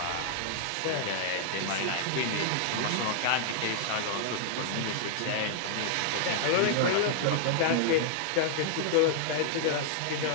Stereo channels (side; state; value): both; different; correlation 0.00